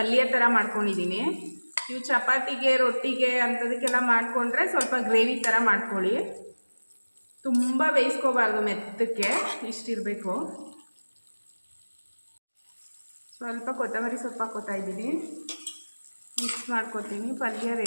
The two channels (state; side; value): inverted; both; correlation -1.00